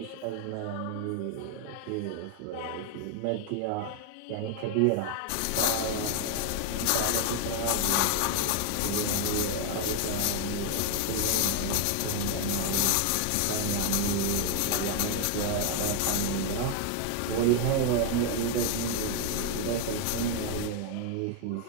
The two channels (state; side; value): different; both; correlation 0.01